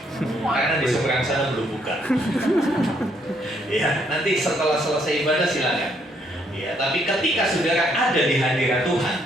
Karena di seberang sana belum buka. Ya, nanti setelah selesai ibadah silakan. Ya, tapi ketika saudara ada di hadirat Tuhan,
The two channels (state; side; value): normal; both; correlation 0.71